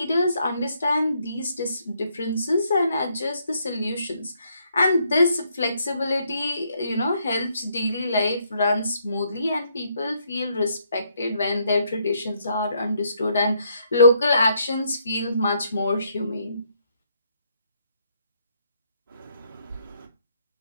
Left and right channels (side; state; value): both; inverted; correlation -0.72